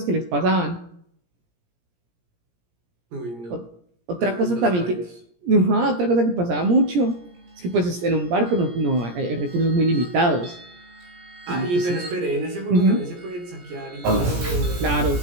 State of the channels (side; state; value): left; late; 17 ms